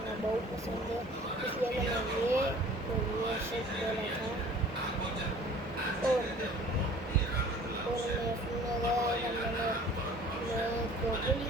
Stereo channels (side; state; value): both; normal; correlation 0.49